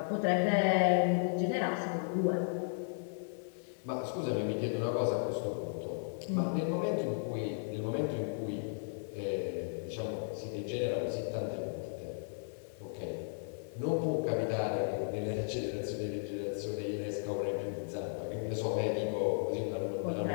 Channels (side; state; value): right; silent; digital silence